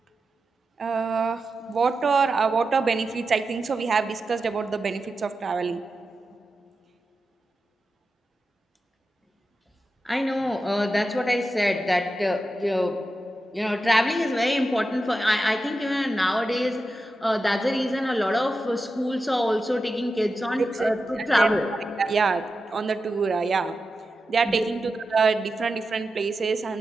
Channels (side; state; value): both; normal; correlation 0.91